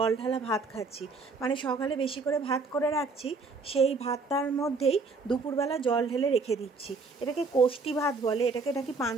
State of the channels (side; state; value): left; quieter; 4.1 dB